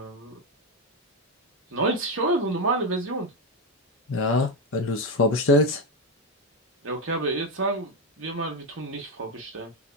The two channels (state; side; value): normal; both; correlation 0.08